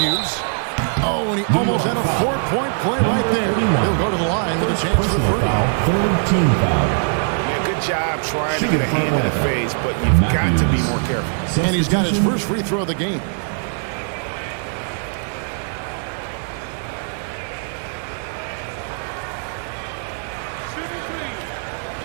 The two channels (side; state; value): left; silent; 65 dB below the other